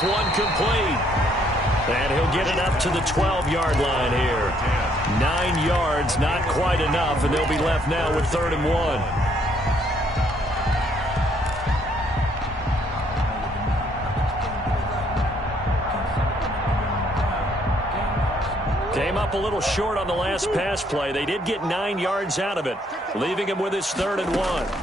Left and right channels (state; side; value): normal; both; correlation 0.68